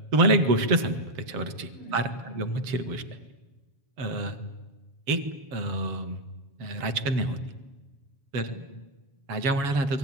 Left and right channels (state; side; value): late; left; 7.3 ms